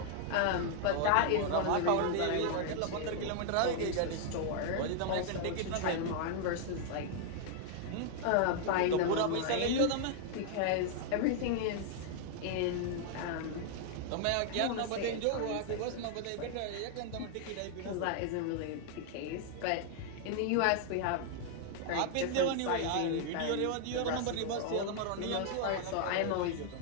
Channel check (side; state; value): both; different; correlation 0.00